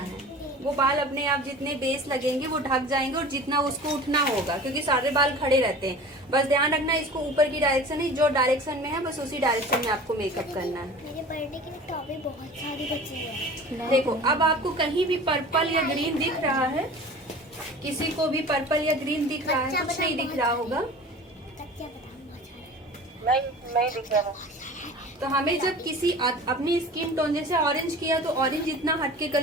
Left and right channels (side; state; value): both; normal; correlation 0.39